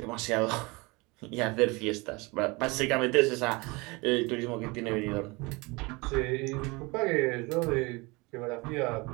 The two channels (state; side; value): quieter; left; 25.7 dB